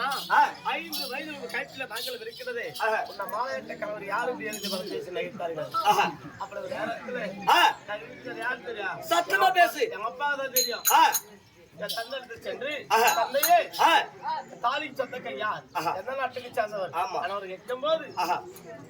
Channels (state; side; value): identical; both; correlation 1.00